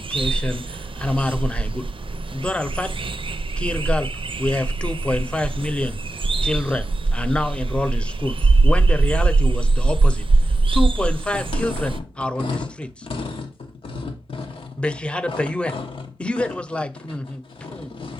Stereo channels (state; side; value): normal; both; correlation 0.91